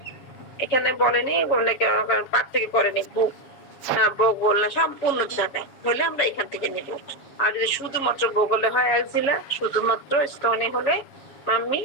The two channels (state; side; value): late; right; 7.3 ms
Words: এখানে বলেনি পার থেকে করেনি, বুক না বগল না, সম্পূর্ণ জায়গায় হলে আমরা এখান থেকে নিব। আর যদি শুধুমাত্র বগলে হয় এক্সিলা, শুধুমাত্র স্তনে হলে মাম্মি,